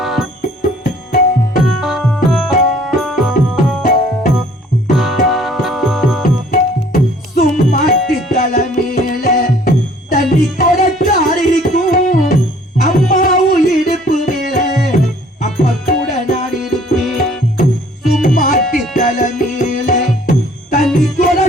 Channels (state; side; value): normal; both; correlation 0.56